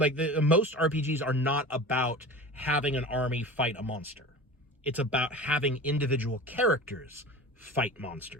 most RPGs are not about having an army fight a monster. It's about having individual characters fight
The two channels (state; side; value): normal; both; correlation 0.35